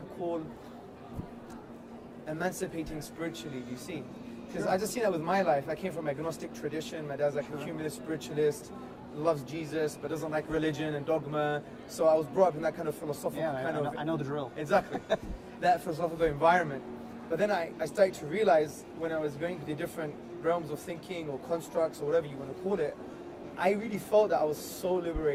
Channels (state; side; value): identical; both; correlation 1.00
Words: call emancipating spiritually, do you see? Because I just seen that with my life. I came from an agnostic tradition. My dad's like a humanist spiritualist, loves Jesus, but doesn't like religion and dogma. So I was brought up in that kind of philosophical I know the drill. Exactly. That philosophical environment. But then I started to realize when I was going to the different realms of thinking or constructs or whatever you want to call it, I really felt that I was so